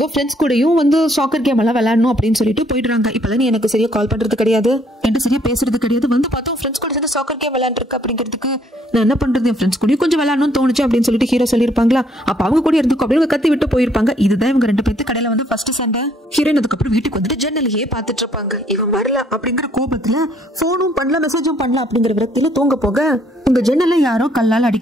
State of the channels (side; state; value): both; normal; correlation 0.66